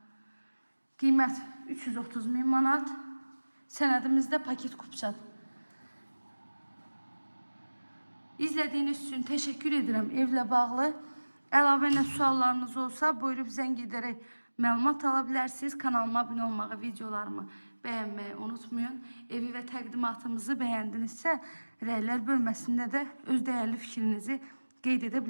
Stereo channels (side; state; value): both; inverted; correlation -1.00